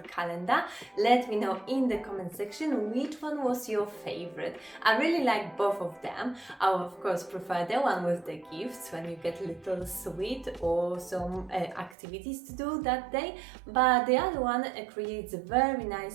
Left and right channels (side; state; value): left; drops out; at 12.0 s